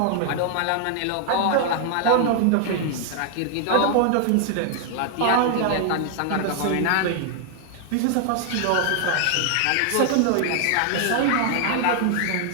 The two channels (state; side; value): different; both; correlation 0.00